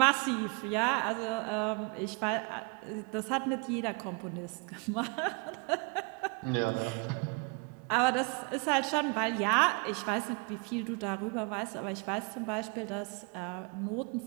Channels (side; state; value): left; quieter; 33.1 dB